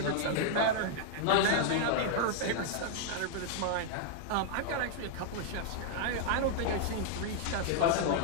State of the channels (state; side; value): different; both; correlation 0.00